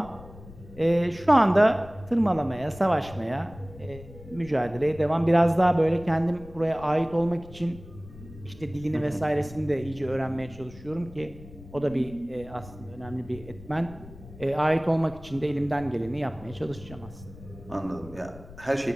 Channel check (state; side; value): noise; left; rumble, 18 dB below the sound